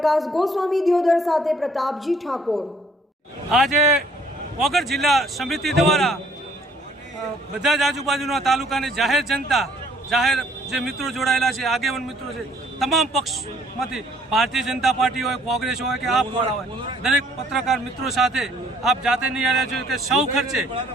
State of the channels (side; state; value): both; normal; correlation 0.61